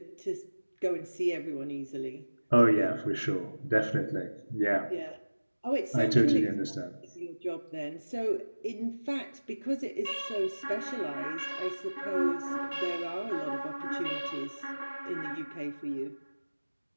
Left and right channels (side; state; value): both; inverted; correlation -1.00